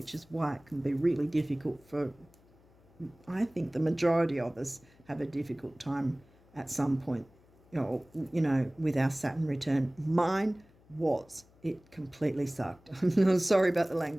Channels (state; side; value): noise; left; hum, 29 dB below the sound